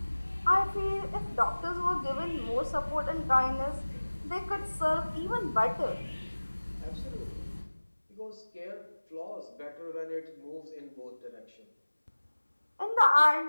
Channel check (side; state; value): both; inverted; correlation -1.00